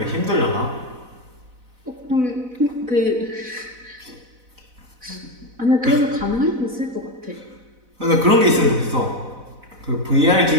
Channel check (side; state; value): left; late; 4.0 ms